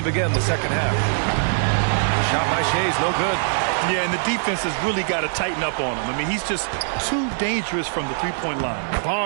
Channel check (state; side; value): silent; left; 64 dB below the other